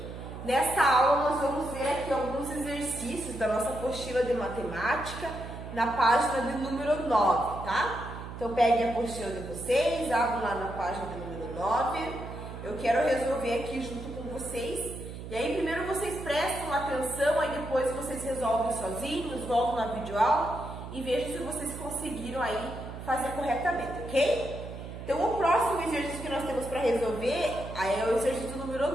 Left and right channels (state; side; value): noise; right; hum, 10 dB below the sound